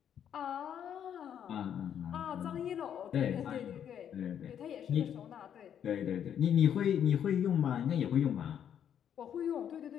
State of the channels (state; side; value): quieter; right; 9.1 dB